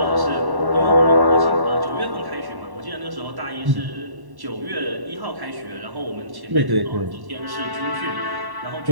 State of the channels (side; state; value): left; late; 1.1 ms